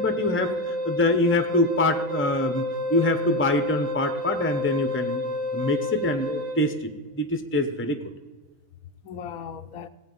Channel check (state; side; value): normal; both; correlation 0.17